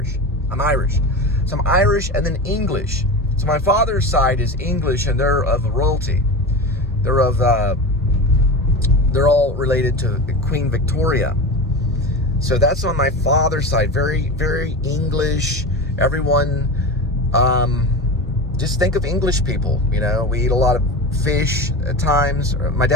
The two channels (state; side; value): normal; both; correlation 0.26